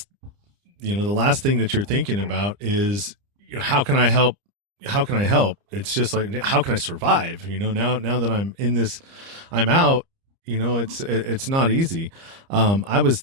thing that you're thinking about is, how can I help? How can I help? It's just like, how can I survive? Now that I'm in this, I'm out. It's not easy. I was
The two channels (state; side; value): late; left; 30 ms